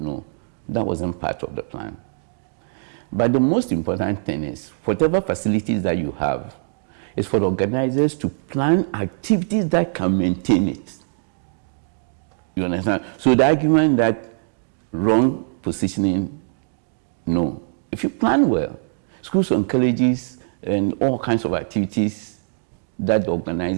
that wasn't part of the plan. But the most important thing is, whatever facilities that you have, is for the organizers to plan activities that can maintain it. You understand? So the argument that wrong positioning, no. If you plan well, schools and colleges and all kinds of activities that the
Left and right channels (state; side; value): silent; left; digital silence